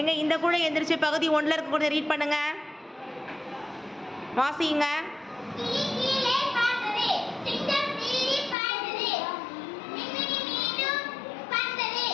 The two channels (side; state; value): right; drops out; at 8.6 s